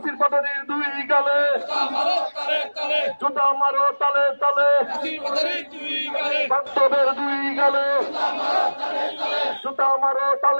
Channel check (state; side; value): inverted; both; correlation -1.00